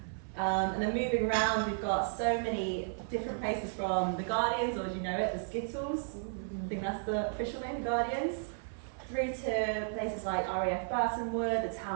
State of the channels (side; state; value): left; silent; 55 dB below the other